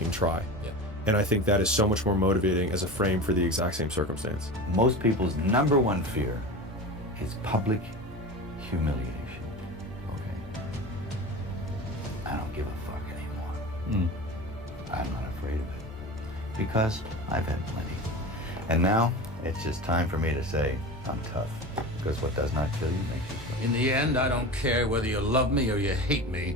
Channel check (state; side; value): normal; both; correlation 0.30